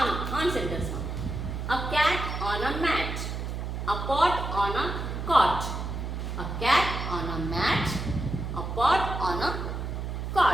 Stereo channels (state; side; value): noise; right; hum, 4 dB below the sound